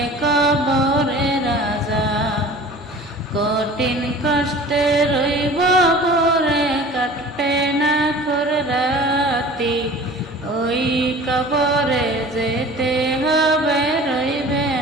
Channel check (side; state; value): both; normal; correlation 0.43